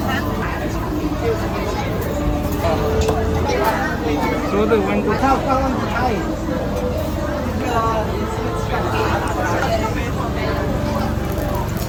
说的温度。它刚刚开。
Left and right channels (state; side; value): identical; both; correlation 1.00